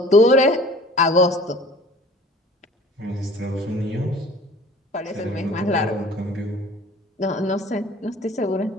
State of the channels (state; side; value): normal; both; correlation 0.47